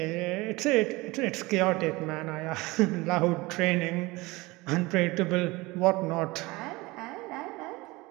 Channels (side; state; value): left; quieter; 22.3 dB